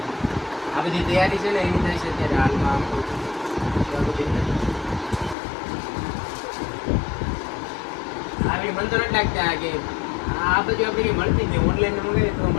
આ બધી તૈયારી છે ને એની થાય છે અત્યારે હાલમાં આમ કહું છું. આવી મન તો નથી લાગતા કે આ બધું આપણે મળતી જ ઓનલાઈન મંગાવીએ તો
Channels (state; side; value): drops out; right; at 5.4 s